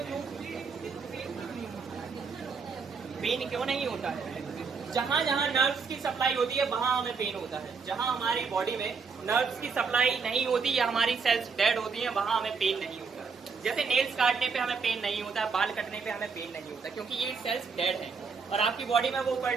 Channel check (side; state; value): left; quieter; 5.2 dB